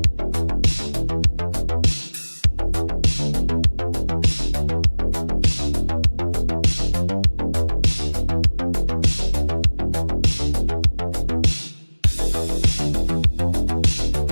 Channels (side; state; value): both; inverted; correlation -1.00